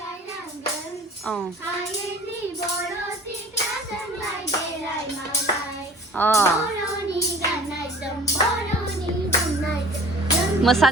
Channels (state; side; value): normal; both; correlation 0.47